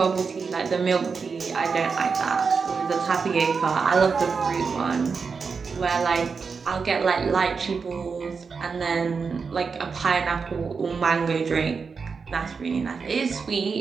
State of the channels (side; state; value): left; quieter; 5.3 dB